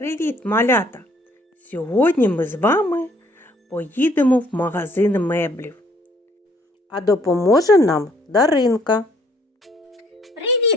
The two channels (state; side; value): normal; both; correlation 0.63